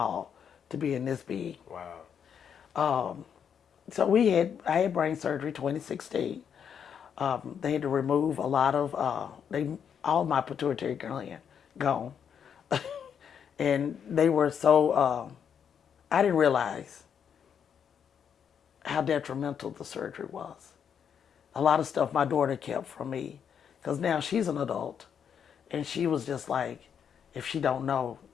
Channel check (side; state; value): right; quieter; 7.8 dB